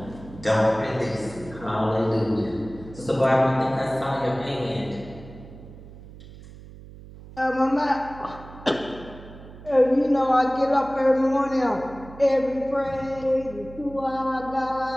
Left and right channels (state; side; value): noise; right; hum, 17 dB below the sound